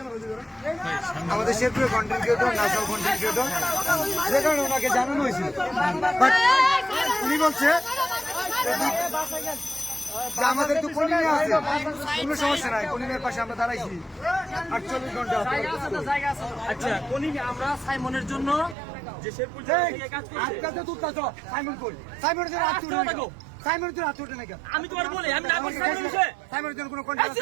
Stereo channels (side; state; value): left; drops out; at 18.8 s